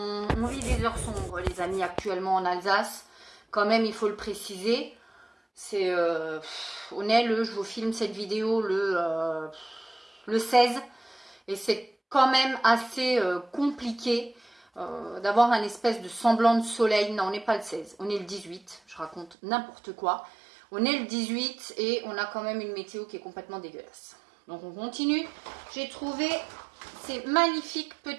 vit des heures sombres, les amis, actuellement en Alsace. Quand même, il faut le préciser. C'est, on est je vous filme cette vidéo le 16. Et c'est quand même assez compliqué d'avoir un espèce de semblant de soleil. Non, on n'est pas le 16, on est le 18. Je raconte n'importe quoi. On est le 18 et on a quand même une météo qui est complètement dégueulasse. Donc on continue. J'ai trouvé ces magnifiques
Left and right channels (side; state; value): left; drops out; at 19.4 s